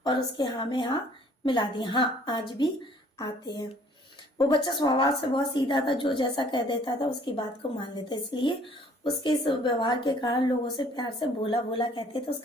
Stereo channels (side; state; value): both; normal; correlation 0.57